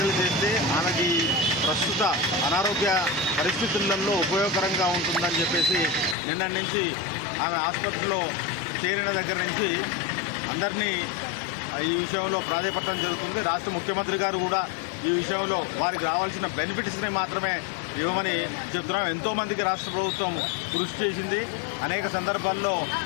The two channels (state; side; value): drops out; right; at 6.2 s